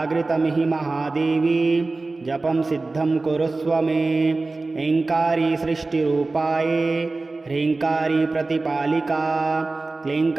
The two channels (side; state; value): left; quieter; 3.4 dB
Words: महादेवी जपं सिद्धं कुरुस्व मे। ऐङ्कारी सृष्टिरूपाये ह्रीङ्कारी प्रतिपालिका